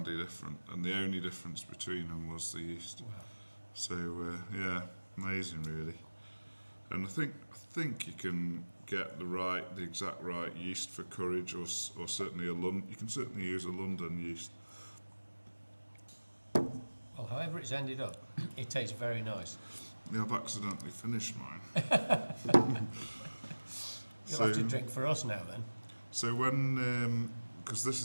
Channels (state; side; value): inverted; both; correlation -1.00